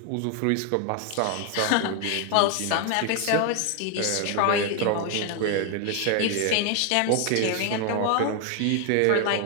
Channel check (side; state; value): both; different; correlation 0.01